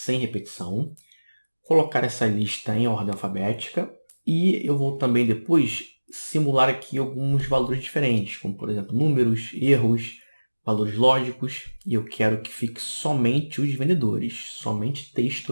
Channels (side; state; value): both; inverted; correlation -1.00